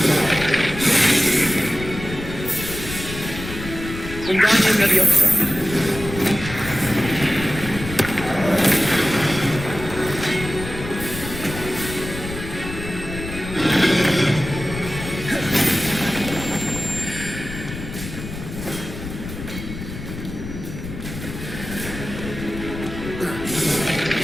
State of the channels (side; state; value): left; noise; rumble, 9 dB below the sound